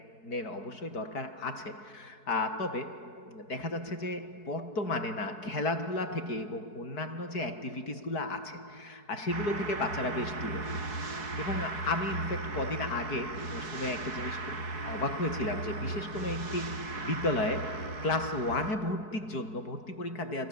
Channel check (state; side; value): late; right; 4.7 ms